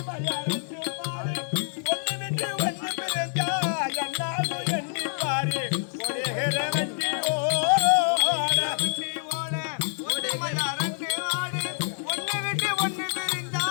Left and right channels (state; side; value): silent; right; digital silence